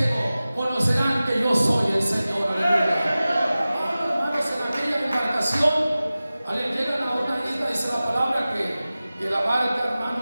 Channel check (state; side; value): inverted; both; correlation -0.96